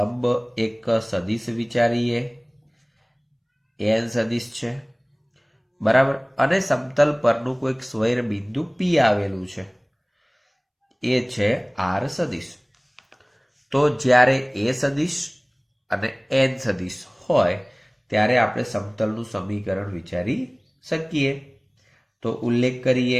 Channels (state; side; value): identical; both; correlation 1.00